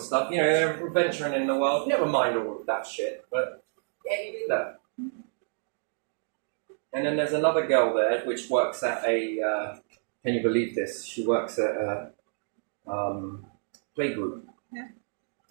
they're venturing in the world, never mind all of that shit, but yeah, he did that. And then there's another girl there, which works at a, can you believe this? She works at a playgroup. Yeah.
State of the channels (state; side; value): silent; left; digital silence